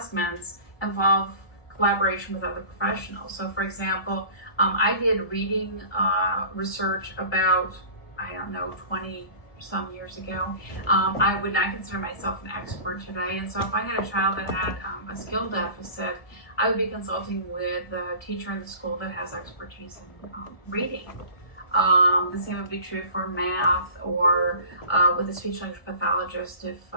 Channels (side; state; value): right; late; 1.6 ms